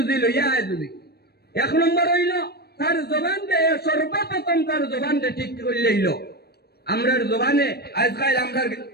লইয়া আয়। যদি এক নম্বর হইল তার জবানটা, সর্বপ্রথম তার জবানটা ঠিক করে লইল। আমরার জবানে আজকাল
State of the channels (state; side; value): late; right; 0.47 ms